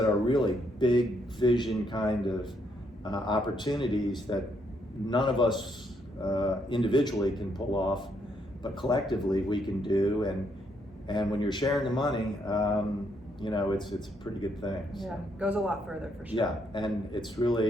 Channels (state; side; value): normal; both; correlation 0.74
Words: are really big vision kind of opportunities that none of us individually can pull off, but collectively we can do. And when you're sharing the money, it's a pretty good thing. Yeah, goes a lot further for sure. Yeah, and it's